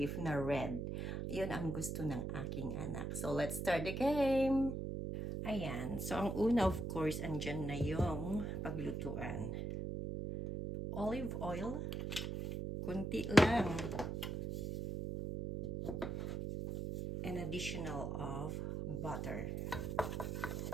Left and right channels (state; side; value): noise; right; hum, 3 dB below the sound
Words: na red. Yun ang gusto ng aking anak. So let's start the game! Ayan. So ang una of course, andyan na yung paglutuan. Olive oil. Kunti lang. An additional of butter.